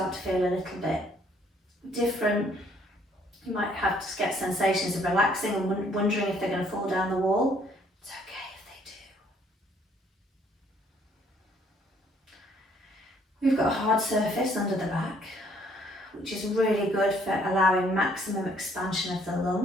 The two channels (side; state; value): both; normal; correlation 0.64